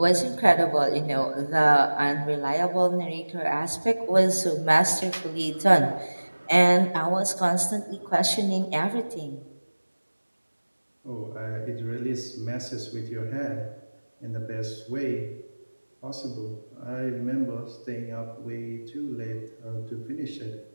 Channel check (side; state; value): both; inverted; correlation -1.00